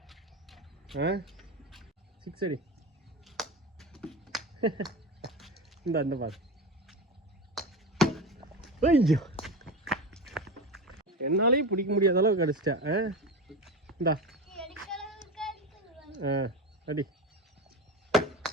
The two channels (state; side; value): normal; both; correlation 0.24